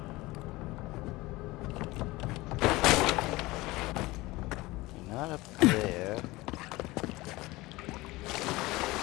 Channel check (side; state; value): right; quieter; 20.5 dB